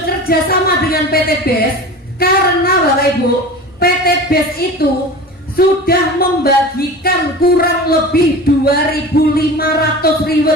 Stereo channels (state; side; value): normal; both; correlation 0.34